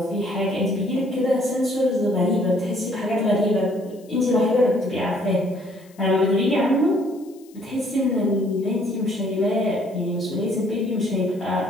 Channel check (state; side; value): noise; left; hiss, 29 dB below the sound